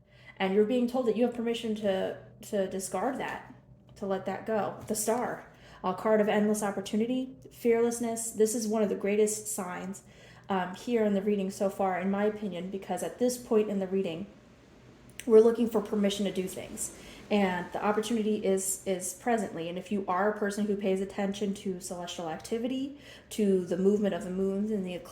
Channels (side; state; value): both; identical; correlation 1.00